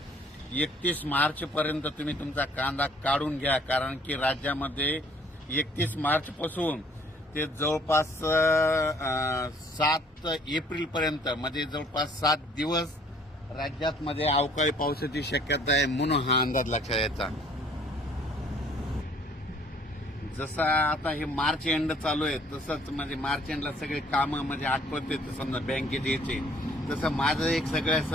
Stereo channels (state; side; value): normal; both; correlation 0.58